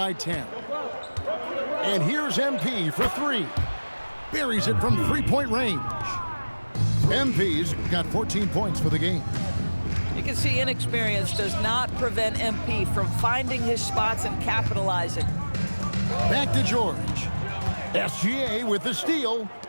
10. And here's MP for 3. Buries it from three-point range. MP's got 14 points for the game. You can see inexperience does not prevent MP from finding his spots and capitalizing. Back to George. SGA with the steal.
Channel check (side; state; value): both; inverted; correlation -1.00